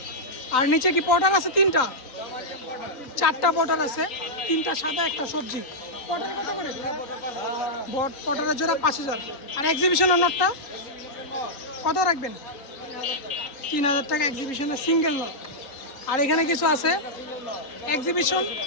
আর নিচে কি পটার আছে? 3টা 4টা পটার আছে, 3টা সাদা, একটা সবজি। পটার কত করে? পটারের জোড়া 5000। আর এক্সিবিশনের নটটা কত রাখবেন? 3000 টাকা এক্সিবিশনের সিঙ্গেল নট। আর এখানে কিছু আছে এক্সিবিশন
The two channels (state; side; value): late; right; 3.8 ms